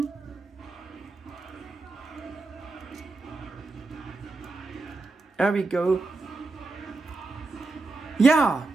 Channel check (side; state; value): left; quieter; 3.6 dB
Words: There we go. Yeah,